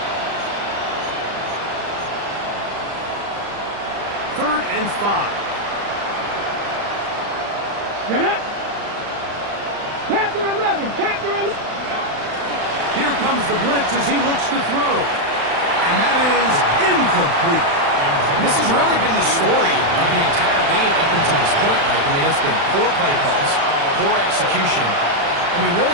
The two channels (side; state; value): left; late; 35 ms